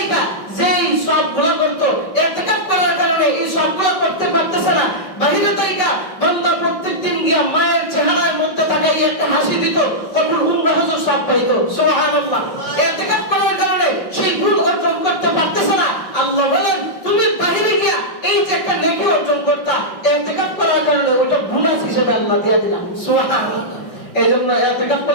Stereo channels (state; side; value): late; right; 5.5 ms